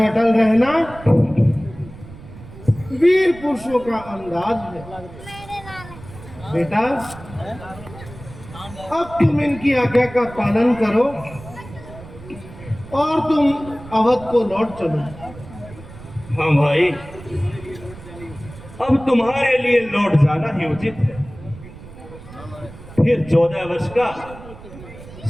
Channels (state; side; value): noise; right; rumble, 17 dB below the sound